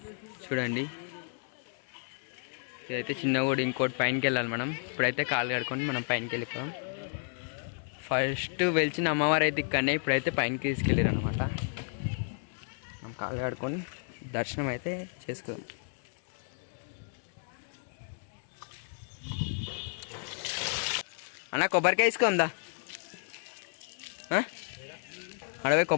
చూడండి, ఇదైతే చిన్న కూడా ఇంకోటి పైనకి వెళ్ళాలి మనం. ఇప్పుడైతే కాలు కడుకొని మనం పైనకి వెళ్ళిపోదాం. ఫస్ట్ వెలిచిన అమ్మవారు అయితే ఇక్కడనే, ఇప్పుడైతే పైనకి తీసుకెళ్ళారు అనమాట. మనం కాలు కడుకొని దర్శనం అయితే చేసుకుందాం. అన్న, కొబ్బరికాయ తీసుకుందా? అడవి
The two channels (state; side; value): silent; right; 56 dB below the other